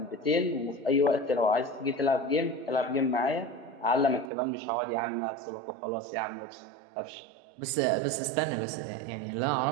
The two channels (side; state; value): left; drops out; at 4.3 s